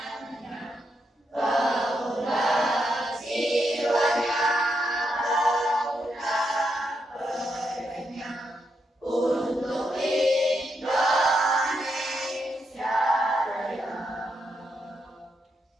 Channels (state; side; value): normal; both; correlation 0.82